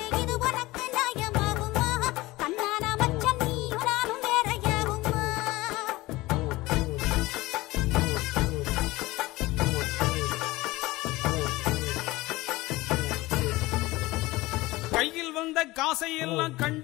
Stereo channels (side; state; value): right; quieter; 19.9 dB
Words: கையில் வந்த காசையெல்லாம்